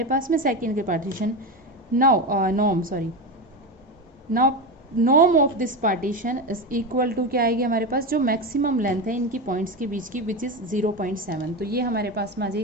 पास में सेकेंड के partition, norm of this partition is equal to क्या आएगी हमारे पास, जो मैक्सिमम लेंथ है इनकी पॉइंट्स के बीच की विच इज़ 0.7। तो ये हमारे पास में आ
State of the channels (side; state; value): both; normal; correlation 0.18